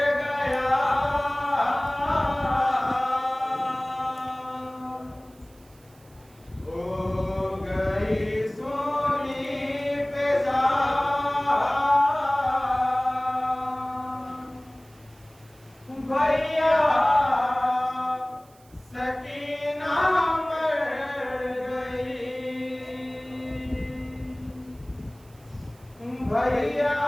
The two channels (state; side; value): noise; right; hiss, 29 dB below the sound